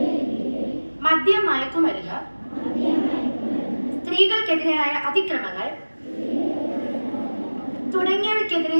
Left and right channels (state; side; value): inverted; both; correlation -1.00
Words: മദ്യം, മയക്കുമരുന്ന്, സ്ത്രീകൾക്കെതിരായ അതിക്രമങ്ങൾ തുടങ്ങിയവയ്ക്കെതിരെ